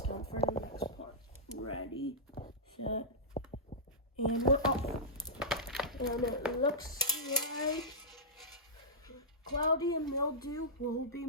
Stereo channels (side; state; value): both; normal; correlation -0.13